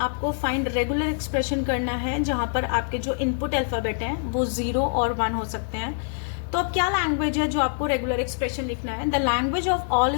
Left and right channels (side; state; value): right; silent; digital silence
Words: फाइंड रेगुलर एक्सप्रेशन करना है जहाँ पर आपके जो इनपुट अल्फाबेट हैं वो 0 और 1 हो सकते हैं। तो अब क्या लैंग्वेज है जो आपको रेगुलर एक्सप्रेशन लिखना है, the language of